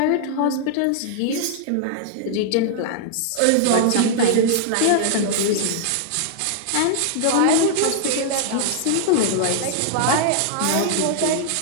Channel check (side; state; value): both; different; correlation -0.01